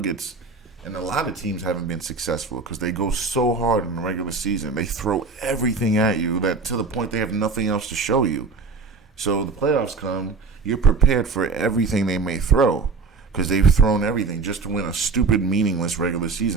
and a lot of teams haven't been successful because they go so hard in the regular season. They throw everything at you that to the point they have nothing else to show you. So the playoffs come, you're prepared for everything they may throw because they've thrown everything just to win a stupid, meaningless regular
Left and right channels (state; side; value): quieter; left; 4.3 dB